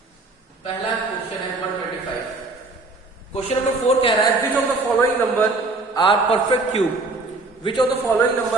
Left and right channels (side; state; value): left; quieter; 3.4 dB